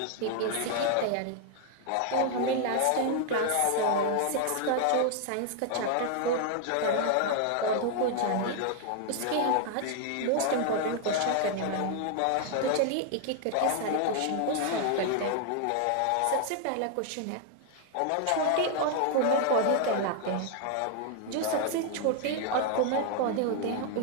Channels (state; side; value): different; both; correlation 0.00